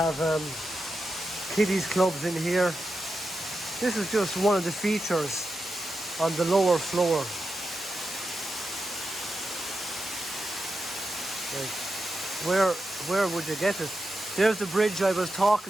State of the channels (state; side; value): normal; both; correlation 0.89